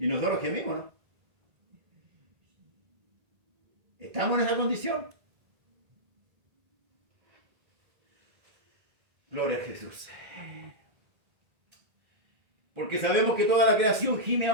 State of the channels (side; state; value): left; late; 1.8 ms